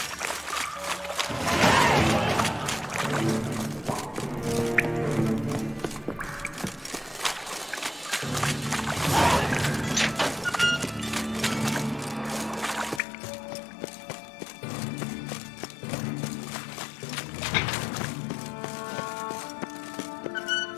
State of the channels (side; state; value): right; drops out; at 13.0 s